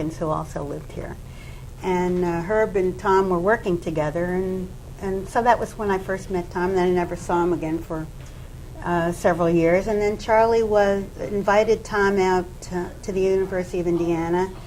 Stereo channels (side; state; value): both; identical; correlation 1.00